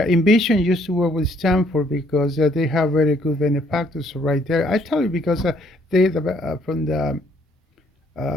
Envision used to work with Stanford because they have very good benefactors right there. I tell you because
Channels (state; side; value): normal; both; correlation 0.66